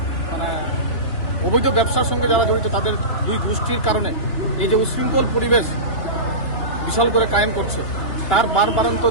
অবৈধ ব্যবসার সঙ্গে যারা জড়িত তাদের দুই গোষ্ঠীর কারণে এই যে উশৃঙ্খল পরিবেশ বিশালগড়ে কায়েম করছে, তার বারবারন্ত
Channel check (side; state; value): right; late; 3.1 ms